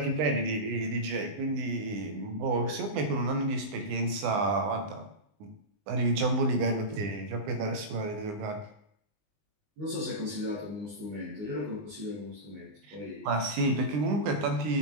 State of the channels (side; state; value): left; late; 19 ms